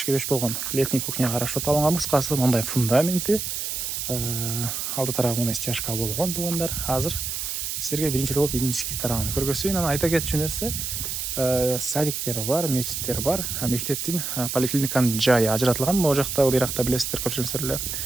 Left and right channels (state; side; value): noise; right; hiss, 3 dB below the sound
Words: болгон летний кухняга расчет алынган. Кыскасы мындай фундаменти, алды тарабы мындай стяжка болгон туугандар. Азыр силерге биринчи болуп үйдүн ички тарабын көргөзөйүн. Анан айта кетчү нерсе, садиктери бар, мечиттер бар, мектептин, поликлиниканын жайы ажыратылган. Могу жакта, ыйракта билесиздер, көпчүлүгүңүздөр эле